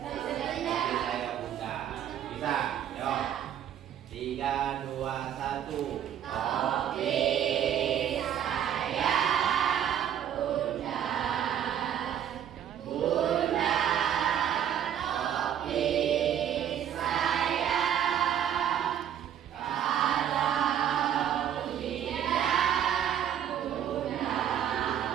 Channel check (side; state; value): left; quieter; 9.9 dB